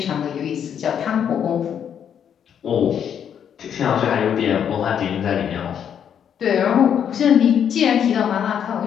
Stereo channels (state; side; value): quieter; right; 8.6 dB